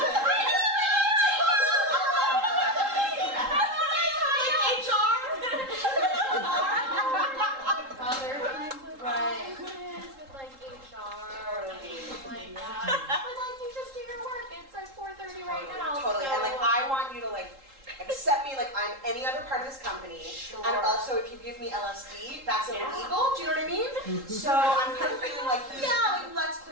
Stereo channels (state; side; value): late; left; 3.7 ms